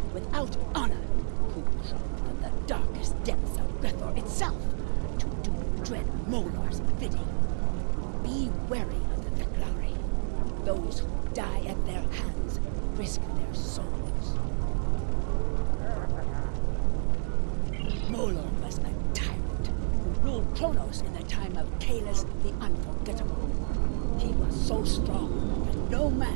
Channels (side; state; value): left; silent; digital silence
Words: without honor who crawl from the darkest depths of Grethor itself to do dread Molar's bidding. Be wary of the Fek'ihi. Those who die at their hands risk their souls. Molor was a tyrant who ruled Kronos in the time of Kalis the Unforgettable. He was so strong that no